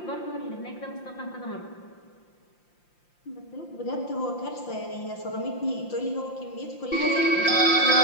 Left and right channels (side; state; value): right; late; 5.7 ms